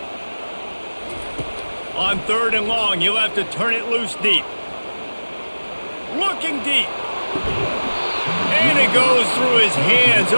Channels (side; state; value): both; inverted; correlation -1.00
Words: On 3rd and long, you'll have to turn it loose deep. Looking deep. And it goes through his hands.